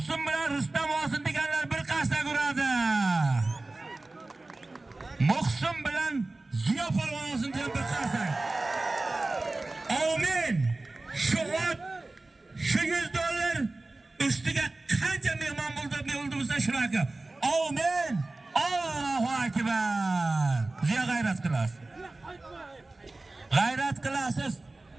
bilan Rustam olsin deganlar bir qasda ko'radi. Muhsin bilan Ziyo polvon olsin degan bir qasda. Amin. Shu ot, shu $100 ustiga qancha mehmon bo'lsa shunaqa. Amin. Allohu akbar. Ziyo g'ayrat qilasiz. G'ayrat qilasiz.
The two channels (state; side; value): quieter; left; 3.1 dB